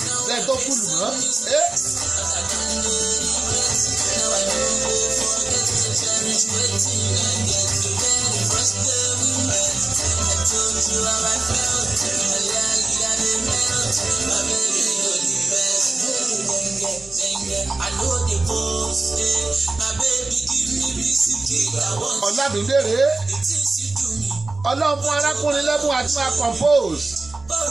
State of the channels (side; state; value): left; quieter; 3.4 dB